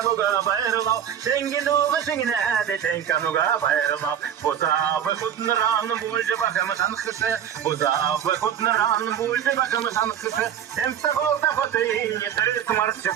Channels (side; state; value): left; quieter; 9.2 dB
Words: bayırlav Tengi duğu şingine tenkanuga bayırlav Buzavı kudnuran bulcu bakımı tanıkısı Buzavı kudnuran Бульше бакам санкышы, темста голда хотын, не терес марчы